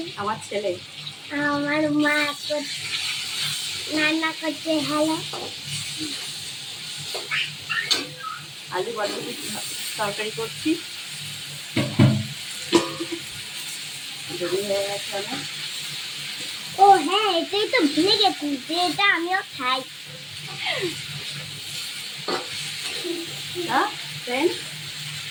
আমার ছেলে আমার মা রান্না করছে। হ্যালো, আলু বরবটি তরকারি করছি। দেরি হয়ে গেছে অনেক। ও হ্যাঁ, এটাই তো ভুলে গেছি যে এটা আমিও খাই। ফ্রেন্ডস,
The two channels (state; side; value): identical; both; correlation 1.00